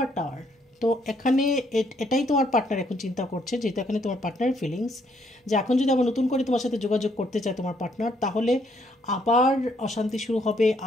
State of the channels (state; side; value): normal; both; correlation 0.70